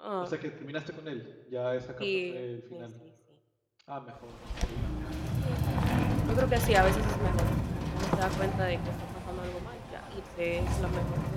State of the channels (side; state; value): both; identical; correlation 1.00